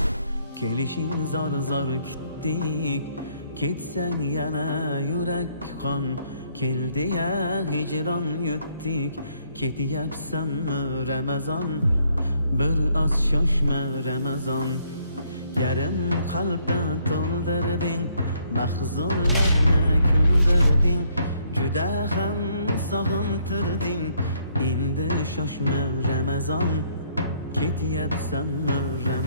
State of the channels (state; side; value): inverted; both; correlation -0.68